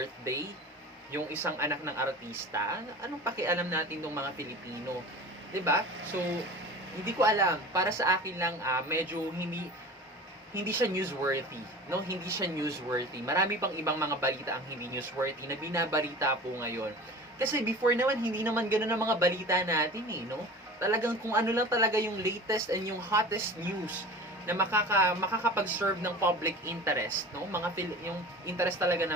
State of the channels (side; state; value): both; normal; correlation 0.37